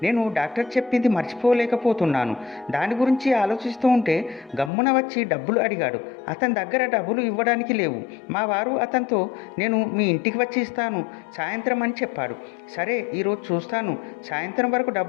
నేను డాక్టర్ చెప్పింది మర్చిపోలేకపోతున్నాను. దాని గురించి ఆలోచిస్తూ ఉంటే గమ్మున వచ్చి డబ్బులు అడిగాడు. అతని దగ్గర డబ్బులు ఇవ్వడానికి లేవు. మా వారు అతనితో నేను మీ ఇంటికి వచ్చి ఇస్తాను సాయంత్రం అని చెప్పాడు. సరే, ఈరోజు చూస్తాను, సాయంత్రం వరకు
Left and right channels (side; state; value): right; drops out; at 4.7 s